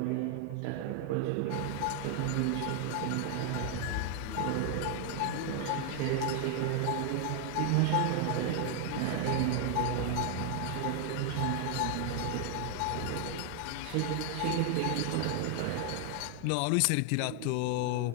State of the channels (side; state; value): both; different; correlation 0.00